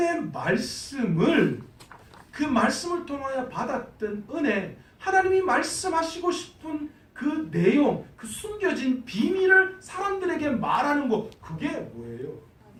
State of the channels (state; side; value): identical; both; correlation 1.00